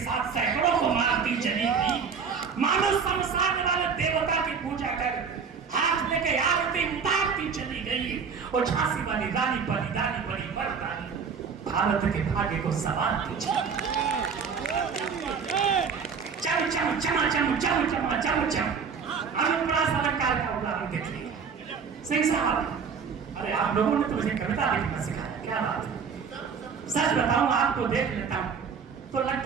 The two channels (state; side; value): quieter; left; 6.1 dB